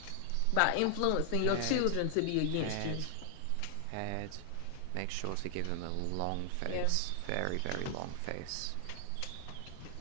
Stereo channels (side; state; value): both; different; correlation 0.00